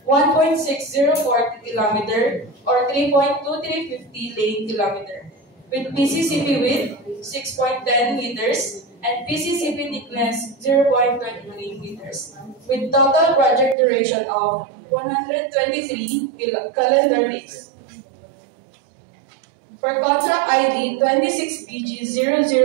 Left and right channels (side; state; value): left; drops out; at 13.8 s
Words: 1.6040 kilometer or 3.2350 lane kilometer. With PCCP width 6.10 meters and PCCP thickness 0.23 meters. With total project duration of 123 calendar days. For contract ID